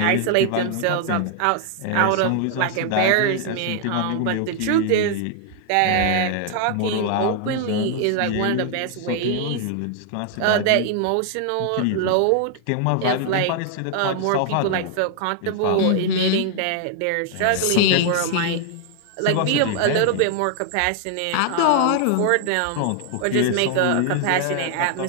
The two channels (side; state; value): both; different; correlation 0.00